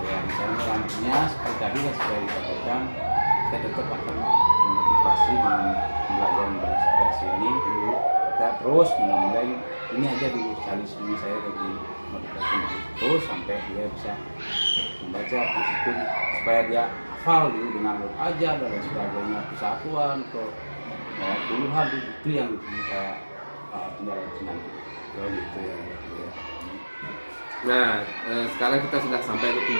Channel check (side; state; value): both; inverted; correlation -1.00